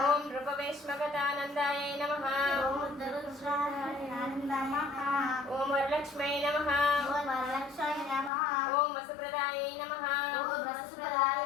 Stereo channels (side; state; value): right; drops out; at 8.3 s